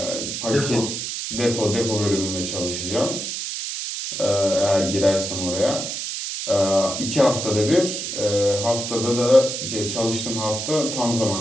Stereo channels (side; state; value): right; noise; hiss, 4 dB below the sound